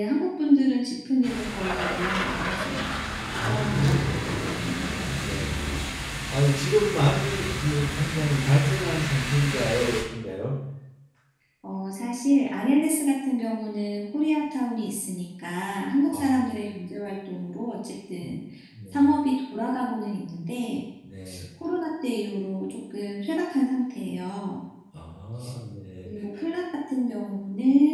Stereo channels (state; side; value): identical; both; correlation 1.00